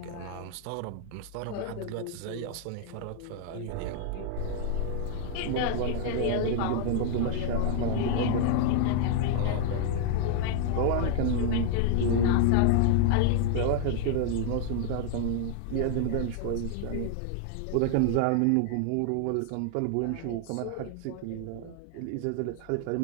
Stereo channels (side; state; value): both; different; correlation 0.00